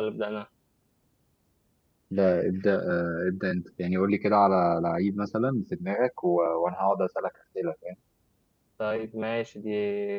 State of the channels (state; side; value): identical; both; correlation 1.00